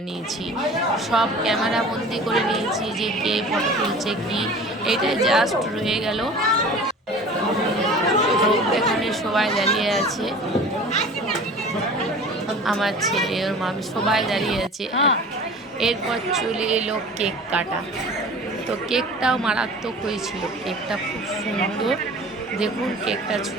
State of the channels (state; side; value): normal; both; correlation 0.41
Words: নিয়েছি, সব ক্যামেরা বন্দি করে নিয়েছি যে কে ফটো তুলছে কি। এইটাই জাস্ট রয়ে গেল। তো এখানে সবাই দাঁড়িয়ে আছে, আমার ছেলে ওর মা সবাই দাঁড়িয়ে আছে। এরপর চলে এলো কেক কাটা। তো কেকটাও মারাত্মক হয়েছিল, কেকটা খুব সুন্দর। দেখুন কেকটা